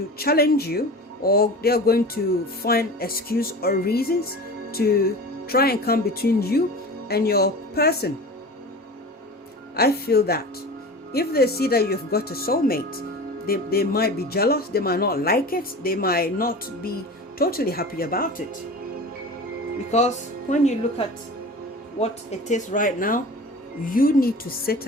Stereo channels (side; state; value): both; normal; correlation 0.34